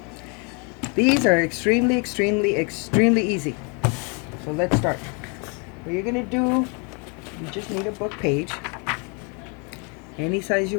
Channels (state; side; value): quieter; right; 34.5 dB